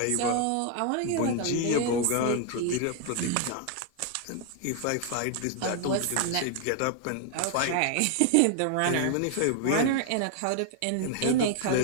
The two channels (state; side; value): different; both; correlation 0.00